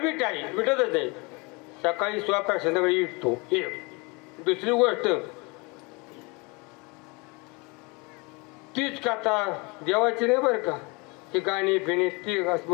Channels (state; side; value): quieter; right; 28.2 dB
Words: आहे विटतच नाही. सकाळी स्वयंपाक संध्याकाळी विटतो. एक दुसरी गोष्ट तीच कथा देवाची नाही बरं का. ही गाणी फिणी ती